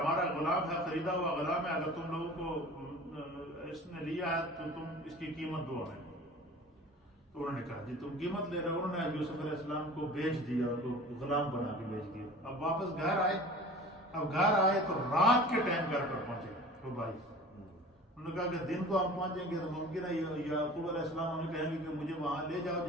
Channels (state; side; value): normal; both; correlation 0.41